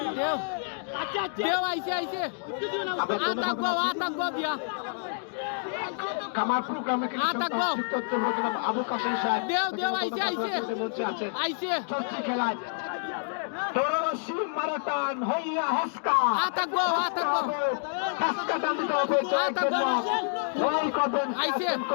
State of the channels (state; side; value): silent; right; digital silence